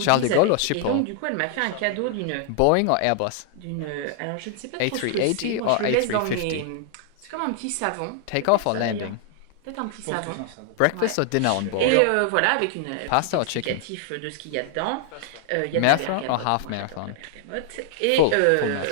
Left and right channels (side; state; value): both; different; correlation 0.00